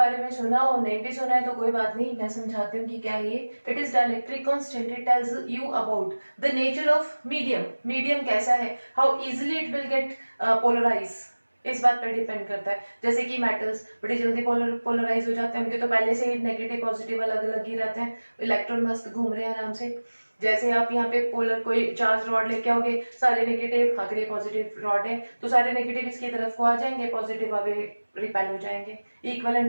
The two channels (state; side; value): inverted; both; correlation -1.00